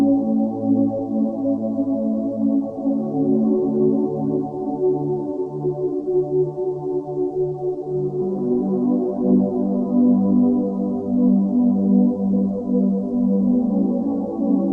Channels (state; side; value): identical; both; correlation 1.00